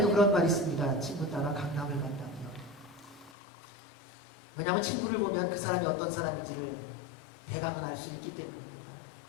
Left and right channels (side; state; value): right; drops out; at 3.4 s